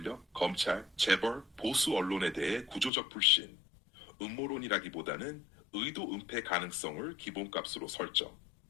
검찰, 재벌, 보수 언론에 대해 구조적 불신, 음모론이라기보다는 의도 은폐 가능성을 기본값으로 설정.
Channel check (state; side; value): drops out; right; at 2.9 s